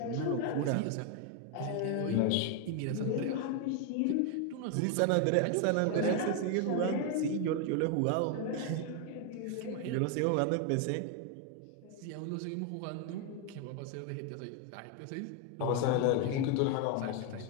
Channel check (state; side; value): different; both; correlation 0.01